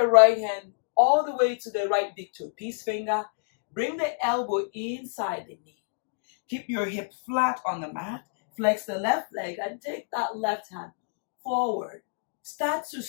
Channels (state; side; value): silent; right; digital silence